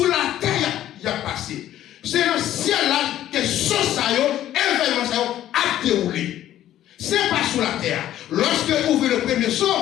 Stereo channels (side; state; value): right; quieter; 12.4 dB